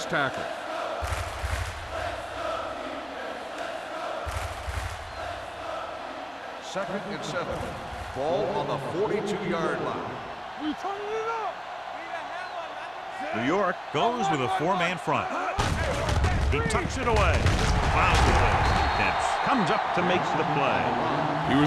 tackle. Second and 7. Ball on the 42-yard line. We turning it up. New York goes with a 4-man front. He tucks it away. Dempsey comes up to make the play. He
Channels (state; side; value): identical; both; correlation 1.00